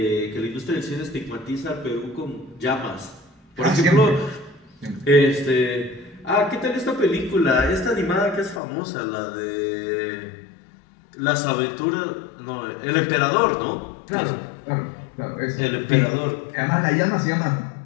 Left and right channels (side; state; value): right; drops out; at 8.6 s